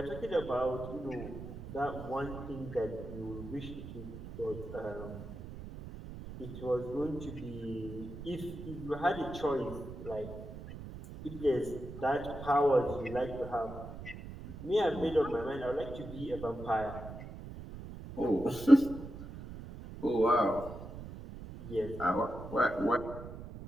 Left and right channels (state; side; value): noise; right; rumble, 11 dB below the sound